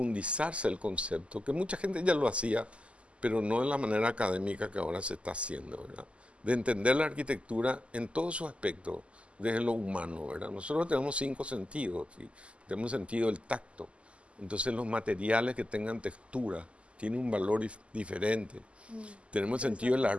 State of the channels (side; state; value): left; late; 0.057 ms